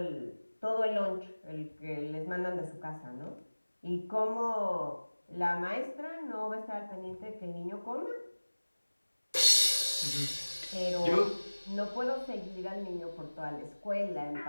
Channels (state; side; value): inverted; both; correlation -1.00